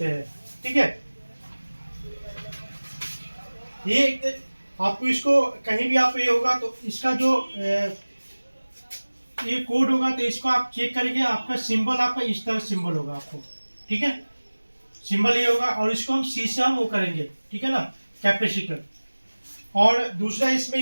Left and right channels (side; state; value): both; inverted; correlation -1.00